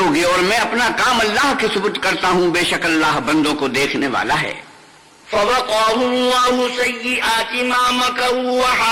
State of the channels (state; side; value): identical; both; correlation 1.00